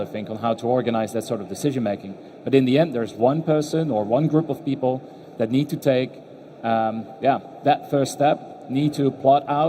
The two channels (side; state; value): both; identical; correlation 1.00